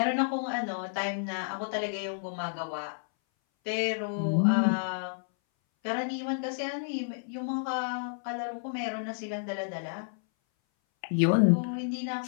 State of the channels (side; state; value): right; silent; 57 dB below the other